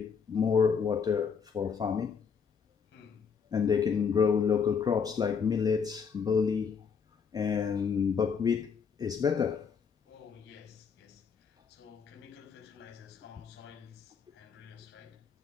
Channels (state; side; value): quieter; right; 6.3 dB